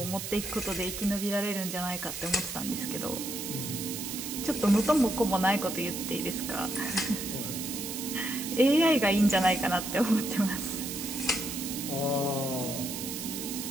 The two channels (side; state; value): right; noise; hiss, 6 dB below the sound